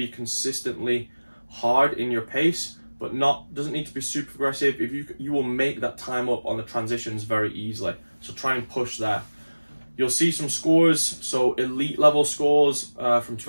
consistently hard in your pace, but doesn't need to be super aggressive, if you will make that time up on the transitions very easily. So try and push there. You'll see some scores. So elite level scores from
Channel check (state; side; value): inverted; both; correlation -1.00